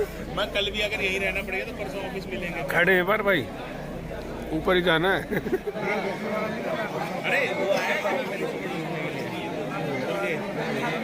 मैं कल भी अगर यही रहना पड़ेगा तो परसों ऑफिस मिलेंगे। खड़े हैं पर भाई, ऊपर ही जाना है। अरे वो आया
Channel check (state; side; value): identical; both; correlation 1.00